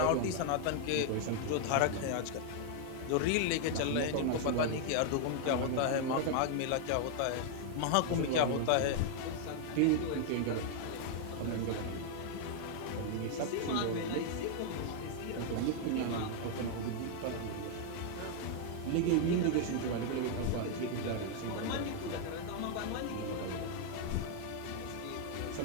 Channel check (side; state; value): both; different; correlation 0.00